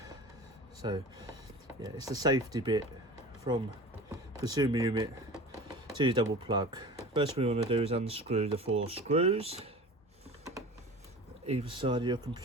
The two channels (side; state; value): both; normal; correlation 0.37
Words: So yeah, it's the safety bit from consumer unit to your double plug. First we want to do is unscrew the 4 screws either side of your